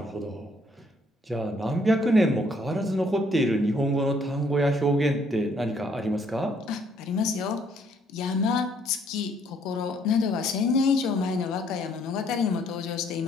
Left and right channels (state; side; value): normal; both; correlation 0.66